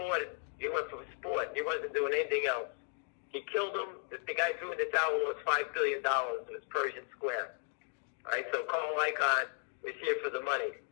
He went for sport. He wasn't doing anything else. He killed him. The guy threw in the towel was $5 billion. It was Persian Square. All right, so Carl Icahn is here for the money.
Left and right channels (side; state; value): right; silent; 54 dB below the other